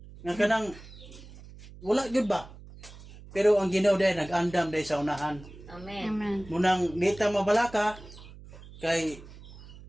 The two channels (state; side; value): noise; right; hum, 18 dB below the sound